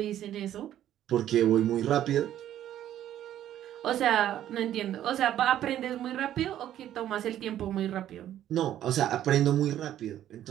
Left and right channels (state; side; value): quieter; left; 11.7 dB